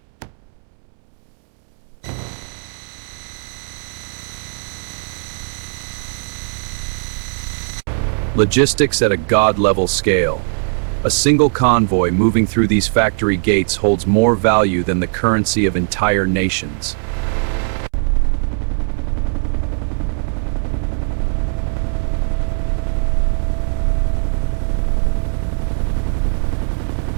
Logistics at a god-level scale. A single convoy moving through these factory gates holds more value than the currency of entire nations.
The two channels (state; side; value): silent; left; 67 dB below the other